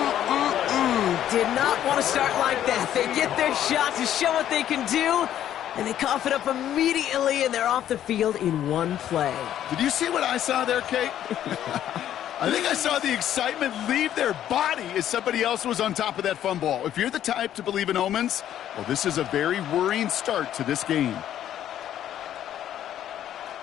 Did not want to start like that. They get their shot to show what they can do, and they cough it up immediately, and they're off the field in one play. Did you see what I saw there, Kate? I think I saw the excitement leave their body as somebody else was on top of that fumble. If you're the type to believe in omens, well, this is a very worrying start to this game.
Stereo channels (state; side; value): quieter; right; 11.1 dB